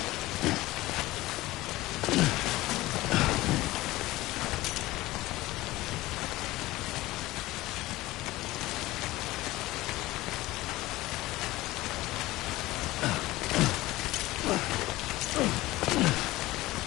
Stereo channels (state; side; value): quieter; right; 18.3 dB